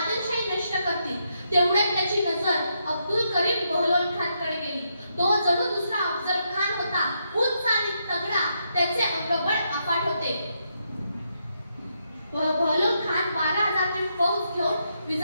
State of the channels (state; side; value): inverted; both; correlation -0.80